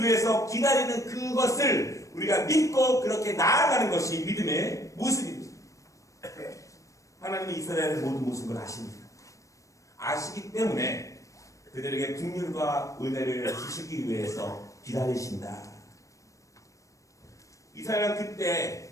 위해서 기다리는 그것을 우리가 믿고 그렇게 나아가는 것이 믿음의 모습입니다. 하나님은 이스라엘의 모든 모습을 아십니다. 아시기 때문에 그들에게 긍휼과 은혜를 주시기 위해서 기다리신다. 이스라엘은 그때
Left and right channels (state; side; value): late; right; 0.16 ms